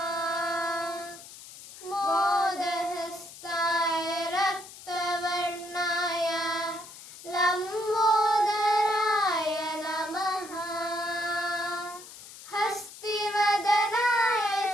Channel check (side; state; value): left; noise; hiss, 16 dB below the sound